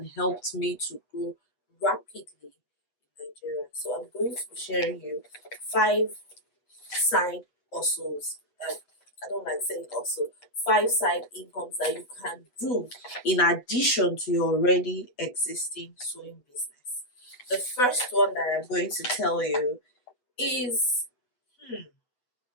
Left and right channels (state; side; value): late; right; 8.5 ms